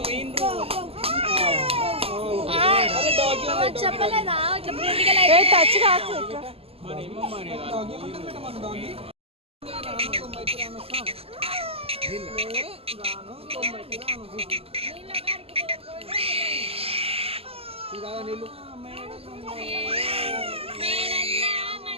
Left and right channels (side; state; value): left; late; 0.28 ms